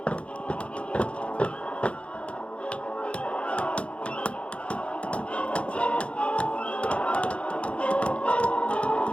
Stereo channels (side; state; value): right; late; 0.060 ms